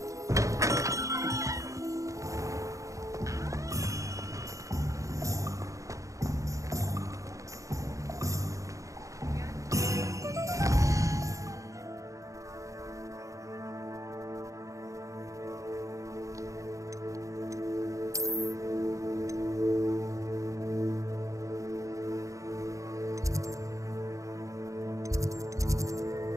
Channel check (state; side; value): late; left; 0.16 ms